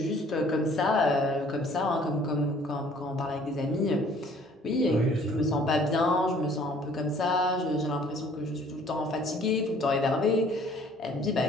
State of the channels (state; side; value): normal; both; correlation 0.56